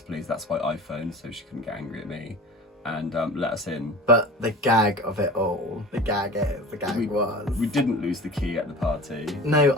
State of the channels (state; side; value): normal; both; correlation 0.38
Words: pleased, that's why I phoned, so she couldn't get angry at me, and let us in. But the gag of it all, the gag was. We didn't lose the key at the party. No,